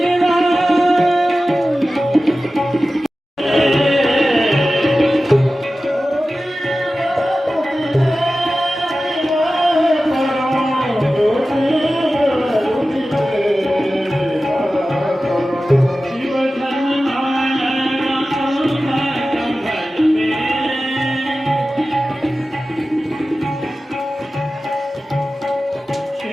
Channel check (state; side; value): normal; both; correlation 0.95